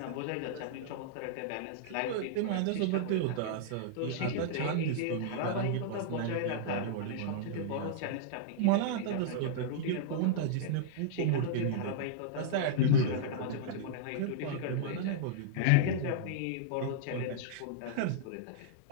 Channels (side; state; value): both; different; correlation -0.02